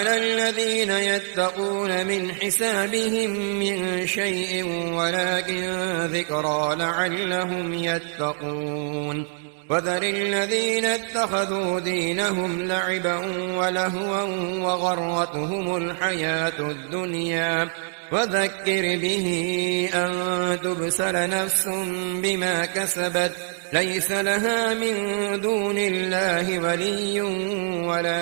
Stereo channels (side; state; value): left; silent; digital silence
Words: الذين يتقون من حسابهم من شيء ولكن ذكرى لعلهم يتقون وذر الذين اتخذوا دينهم لعبا ولهوا وغرتهم الحياة الدنيا وذكر به أن تبسل نفس بما كسبت ليس لها من دون الله ولي